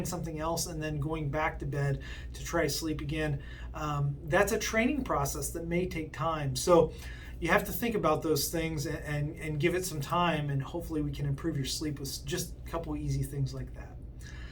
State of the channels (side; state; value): both; identical; correlation 1.00